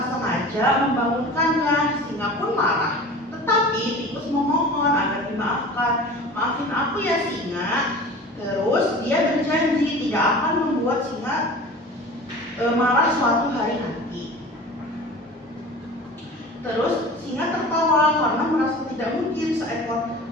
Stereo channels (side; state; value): both; normal; correlation 0.38